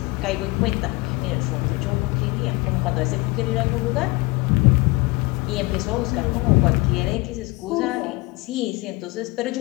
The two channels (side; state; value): right; quieter; 23.4 dB